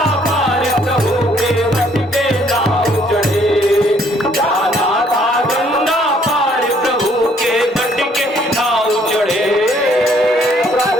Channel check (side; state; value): both; normal; correlation 0.64